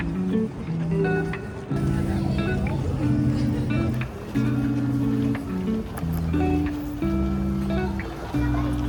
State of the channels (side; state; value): both; identical; correlation 1.00